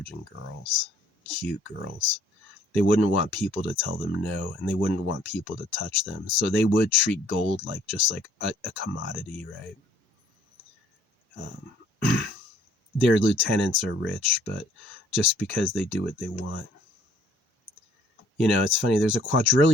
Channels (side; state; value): both; normal; correlation 0.60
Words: girls, cute girls. They wouldn't want people to tell them no, and they wouldn't want people to touch them. So they would treat gold like just like a commodity, right? Their lieutenants are rich, but just because they do what they want. You know, it's funny. There's a